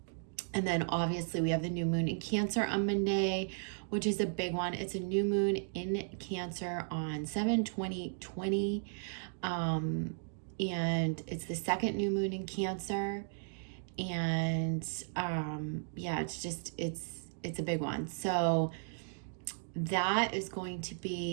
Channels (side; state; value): left; silent; digital silence